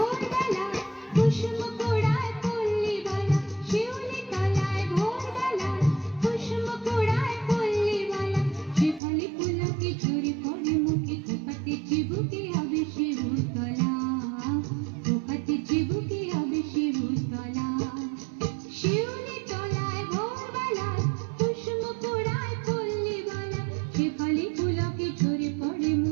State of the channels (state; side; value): drops out; left; at 9.0 s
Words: কুসুম কুড়ায় পল্লীবালা, শিউলি তলায় ভোরবেলা কুসুম কুড়ায় পল্লীবালা, শেফালি পুলকে ঝরে পড়ে মুখে, খোপাতে চিবুকে হবে শিউতলা, খোপাতে চিবুকে হবে শিউতলা। শিউলি তলায় ভোরবেলা কুসুম কুড়ায় পল্লীবালা, শেফালি পুলকে ঝরে পড়ে